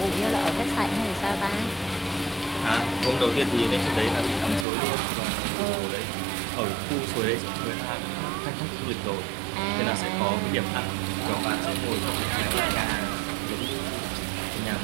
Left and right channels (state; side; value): drops out; left; at 4.7 s